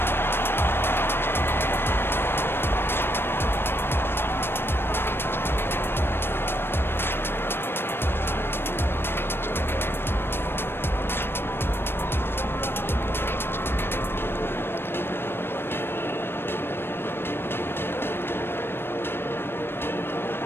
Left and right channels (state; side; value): late; right; 0.11 ms